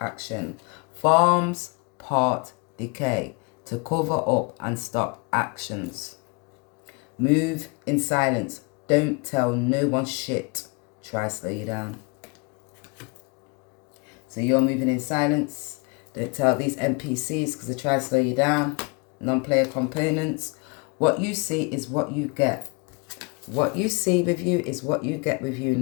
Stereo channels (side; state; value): right; quieter; 30.7 dB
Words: Farms part decay to cover up and stop actions. Move in silence. Don't tell no one shit. Try slow you down. So you're moving in silence. Don't tell these NPCs because they try to slow you down. Non-player components. What you see is what you get. What you see with you is what you get with you.